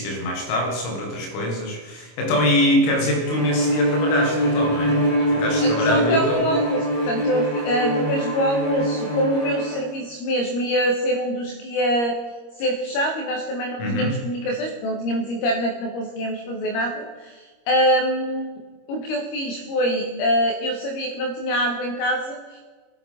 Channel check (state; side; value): late; right; 25 ms